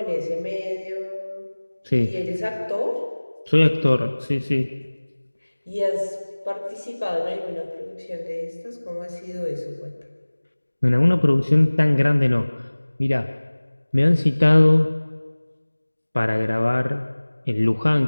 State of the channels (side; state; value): both; inverted; correlation -1.00